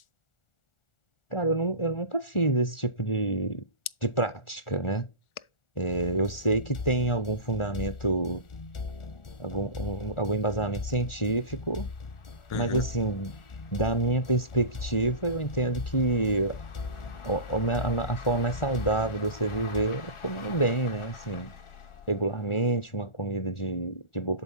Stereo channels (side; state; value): right; late; 1.4 ms